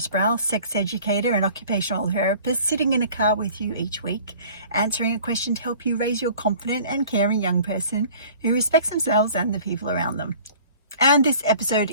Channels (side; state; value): both; inverted; correlation -0.48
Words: Sproul, sex educator and occupational therapist, sitting in a car with you each week, answering a question to help you raise your confident and caring young person who respects themselves and the people around them. And this episode